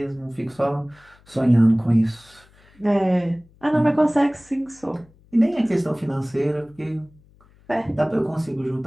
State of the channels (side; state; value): left; noise; hum, 29 dB below the sound